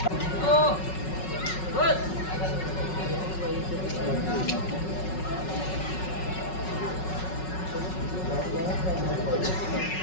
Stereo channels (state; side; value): late; right; 5.4 ms